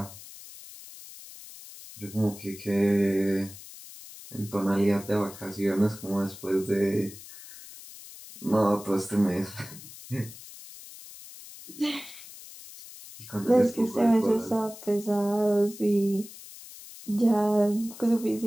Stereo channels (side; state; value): left; noise; hiss, 16 dB below the sound